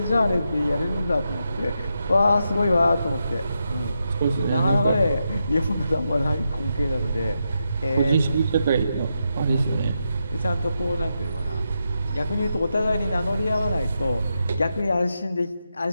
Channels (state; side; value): inverted; both; correlation -0.85